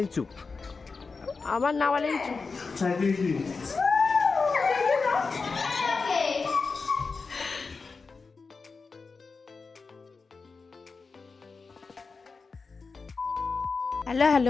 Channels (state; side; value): quieter; right; 4.5 dB